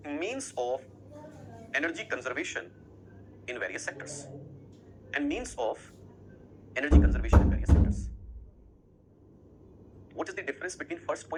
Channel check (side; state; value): both; identical; correlation 1.00